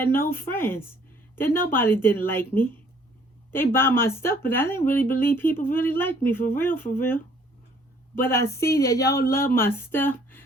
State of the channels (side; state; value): both; normal; correlation 0.60